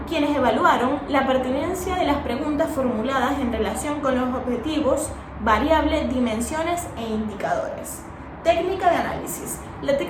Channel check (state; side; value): identical; both; correlation 1.00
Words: quienes evaluaron la pertinencia de las preguntas formuladas en relación con los objetivos, variables, dimensiones e indicadores. Técnica de análisis. La